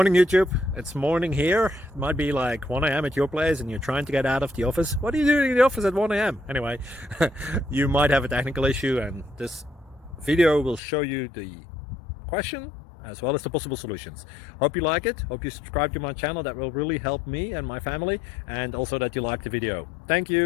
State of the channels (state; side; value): drops out; right; at 10.8 s